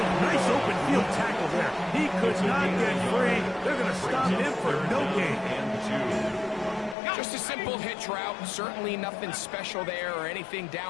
Nice open field tackle there. He could not get free. They're going to stop him for no gain. Just a simple hitch route. Certainly nothing special there or anything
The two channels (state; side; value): drops out; right; at 7.0 s